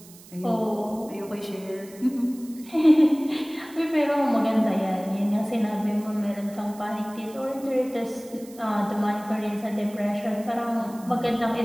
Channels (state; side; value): noise; right; hiss, 21 dB below the sound